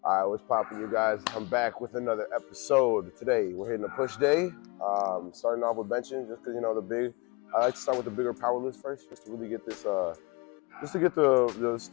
All right, what's poppin', you guys? I'm back with another episode. Today, we're hitting a push day. Starting off with benching, just because, I like to start with the bigger power lifts first, just to really get this, just to get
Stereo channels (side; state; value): right; quieter; 28.0 dB